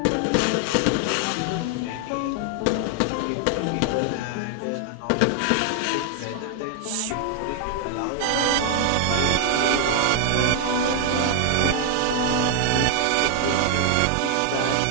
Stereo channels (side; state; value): both; different; correlation 0.00